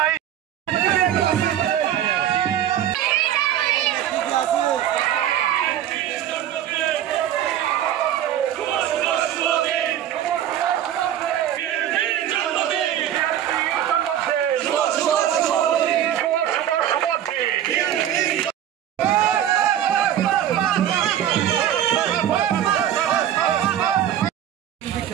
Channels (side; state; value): left; quieter; 11.0 dB